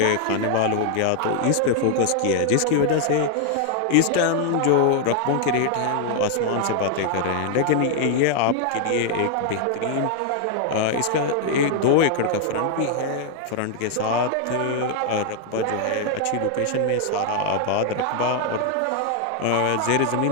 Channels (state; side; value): different; both; correlation 0.00